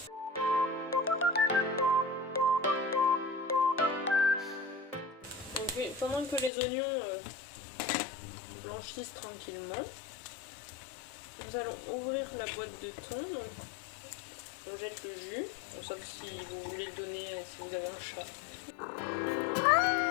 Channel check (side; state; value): right; drops out; at 6.5 s